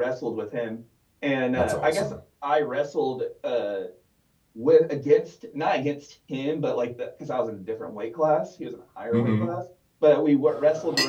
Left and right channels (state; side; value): identical; both; correlation 1.00